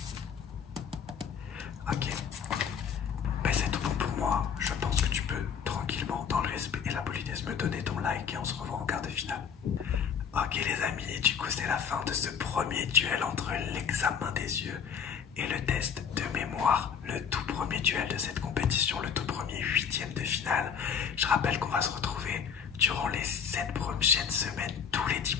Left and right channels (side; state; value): right; quieter; 7.3 dB